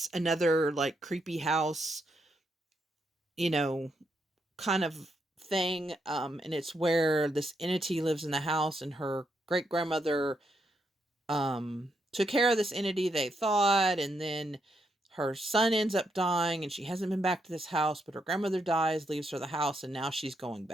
another like creepy house, you know, kind of thing. And it's where this entity lives in the house, and her great grandmother took care of this entity, they thought, and then her son ends up dying and she hasn't been back to this house, but her grandmother dies, leaves her the house, and now she's going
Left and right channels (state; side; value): normal; both; correlation 0.79